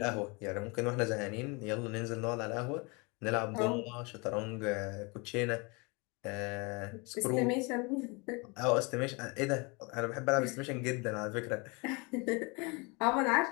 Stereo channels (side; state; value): right; quieter; 29.4 dB